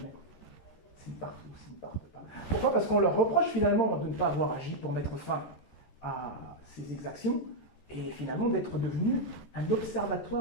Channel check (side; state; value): right; late; 14 ms